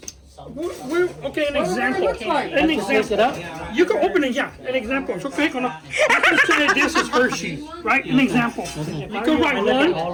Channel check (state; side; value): identical; both; correlation 1.00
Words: Okay, an example. An I have to pick it example. up. You can open it, yeah. An example. So click on it. Let's say this is Hershey, right? An example. You can write 1,